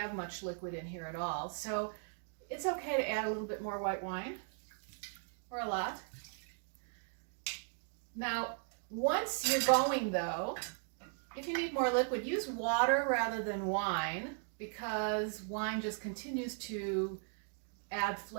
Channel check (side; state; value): left; silent; 53 dB below the other